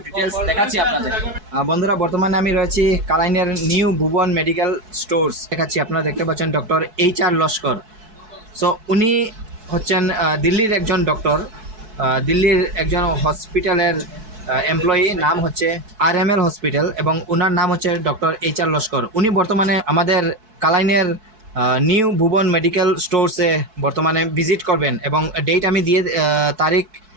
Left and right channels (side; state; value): left; late; 4.6 ms